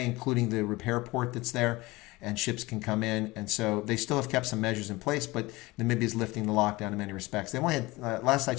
including the repair port that's there, and ships can come in. And so they still have kept some measures in place, but Namibia is lifting the lockdown in many respects. They only had, last I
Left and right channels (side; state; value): right; quieter; 21.4 dB